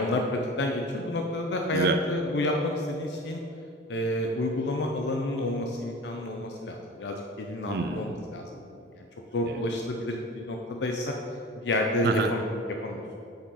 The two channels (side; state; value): both; normal; correlation 0.37